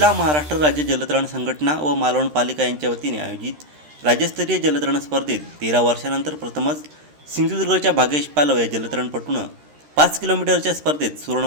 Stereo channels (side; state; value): left; late; 13 ms